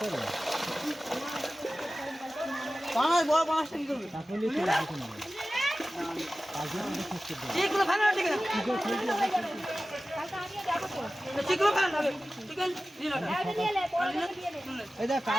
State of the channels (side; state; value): both; normal; correlation 0.96